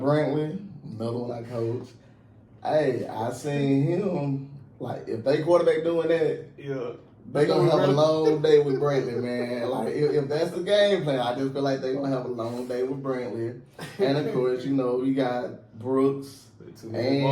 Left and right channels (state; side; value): identical; both; correlation 1.00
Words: another one I coach, hey, I seen him, like, if they quarterback doing that, Yeah. they gonna have a long day with Brantley, man. Like, if that's the game plan, I just feel like they gonna have a long day with Brantley. And of course, you got Brooks.